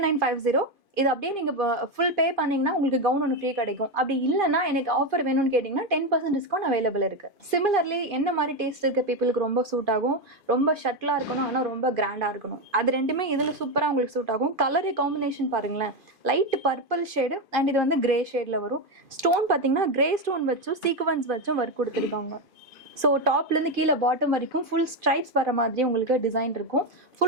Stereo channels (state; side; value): late; left; 2.5 ms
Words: இது அப்படியே நீங்கள் ஃபுல் பே பண்ணிங்கன்னா உங்களுக்கு கவுன் ஒன்று ஃப்ரீ கிடைக்கும். அப்படி இல்லைன்னா எனக்கு ஆஃபர் வேணும்னு கேட்டிங்கன்னா 10% டிஸ்கவுண்ட் அவைலபிள் இருக்குது. சிமிலர்லி என்ன மாதிரி டேஸ்ட் இருக்க பீப்புளுக்கு ரொம்ப சூட் ஆகும், ரொம்ப ஷட்டிலாக இருக்கணும் ஆனால் ரொம்ப கிராண்டாக இருக்கணும், அது ரெண்டுமே இதில் சூப்பராக உங்களுக்கு சூட் ஆகும். கலர் காம்பினேஷன் பாருங்களேன், லைட் பர்பிள் ஷேடு அண்ட் இது வந்து கிரே ஷேடில் வரும். ஸ்டோன் பார்த்தீங்கன்னா கிரே ஸ்டோன் வச்சும் சீக்வன்ஸ் வச்சும் ஒர்க் கொடுத்துருக்காங்க. ஸோ டாப்லேருந்து கீழே பாட்டம் வரைக்கும் ஃபுல் ஸ்ட்ரைப்ஸ் வர மாதிரி உங்களுக்கு டிசைன் இருக்கும்.